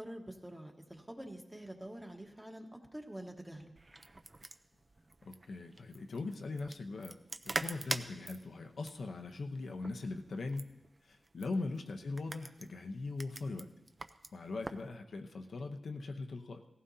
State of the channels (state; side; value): normal; both; correlation 0.94